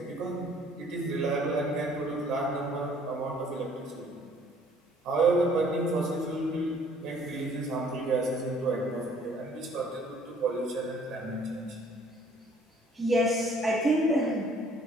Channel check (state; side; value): normal; both; correlation 0.58